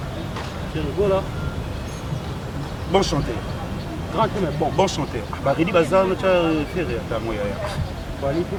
Bon chanteur. Grand mais bon. Bon chanteur. Redi Bazar, tu as fait rire. T'as moi. Wali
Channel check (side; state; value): both; identical; correlation 1.00